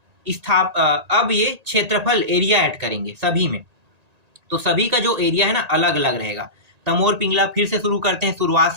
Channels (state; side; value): late; left; 1.9 ms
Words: ये क्षेत्रफल, एरिया ऐड करेंगे सभी में। तो सभी का जो एरिया है ना, अलग अलग रहेगा। तमोर पिंगला, फिर से शुरू करते हैं, शुरुआत